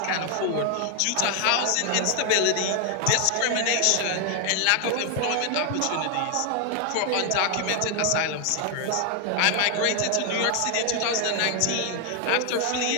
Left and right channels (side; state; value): both; different; correlation 0.00